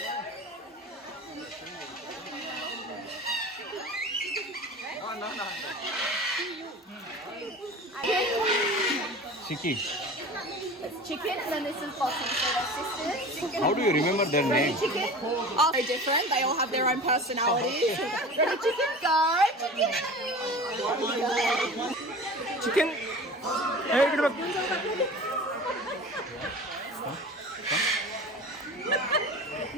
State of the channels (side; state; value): both; normal; correlation 0.37